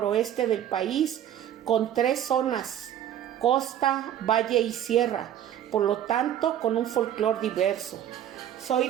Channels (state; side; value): quieter; left; 10.7 dB